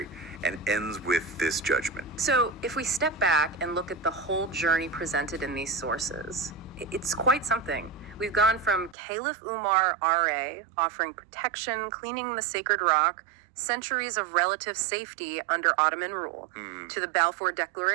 and ends with this judgment. So if we step back and look at the whole journey presented in these sources, it's quite something. We've gone from Caliph Umar R.A. offering protection, cleaning the sacred rock, centuries of relative safety under Ottoman rule, to the Balfour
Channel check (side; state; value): left; drops out; at 9.0 s